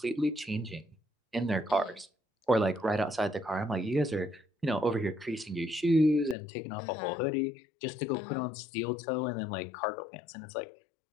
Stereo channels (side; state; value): right; drops out; at 6.4 s